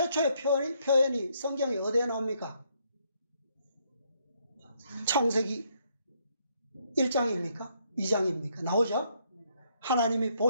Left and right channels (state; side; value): inverted; both; correlation -0.72